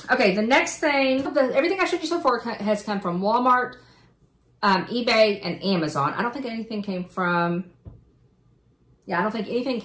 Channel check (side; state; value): both; identical; correlation 1.00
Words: Okay, the next thing, everything I showed you so far has come from Walmart, eBay, and Amazon. I don't think anything came from